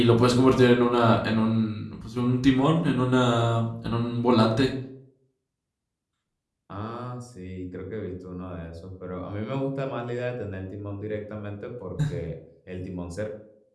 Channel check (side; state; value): both; identical; correlation 1.00